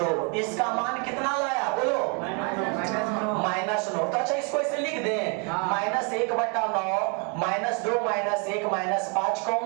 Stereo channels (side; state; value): left; quieter; 35.6 dB